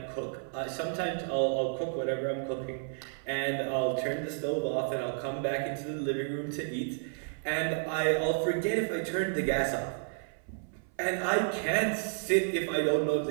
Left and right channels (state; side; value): silent; left; 57 dB below the other